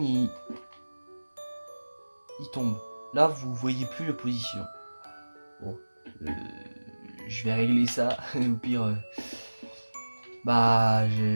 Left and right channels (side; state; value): both; inverted; correlation -1.00